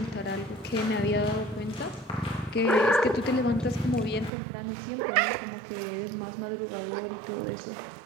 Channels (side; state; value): left; drops out; at 4.3 s